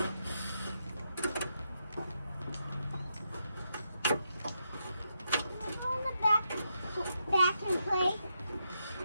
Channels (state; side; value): inverted; both; correlation -0.83